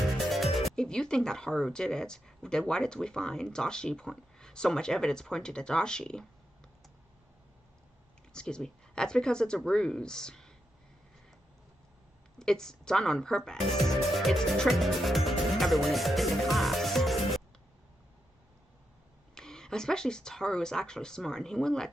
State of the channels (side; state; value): both; normal; correlation 0.85